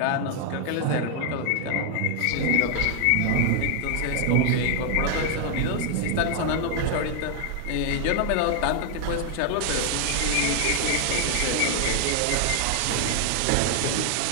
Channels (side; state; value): both; different; correlation 0.00